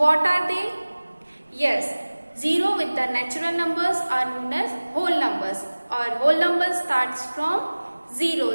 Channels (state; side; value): inverted; both; correlation -1.00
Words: are they? Yes, 0 with the natural numbers are known as whole numbers, or whole numbers starts from